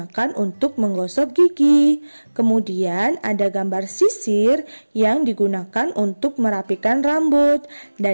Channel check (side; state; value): both; inverted; correlation -1.00